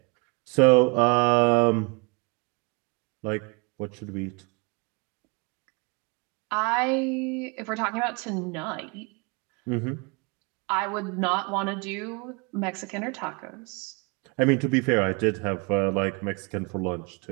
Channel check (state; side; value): quieter; left; 30.0 dB